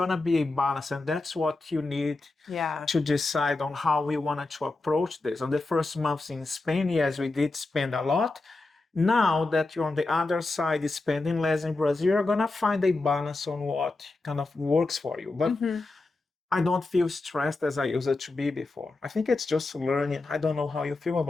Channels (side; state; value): right; quieter; 3.3 dB